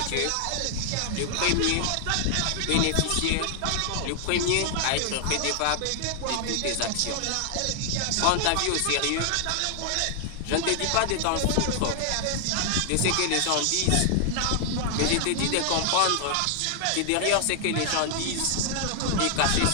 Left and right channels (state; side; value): different; both; correlation 0.00